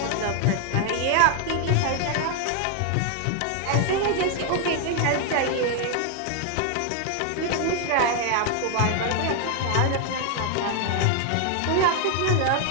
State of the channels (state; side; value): different; both; correlation 0.00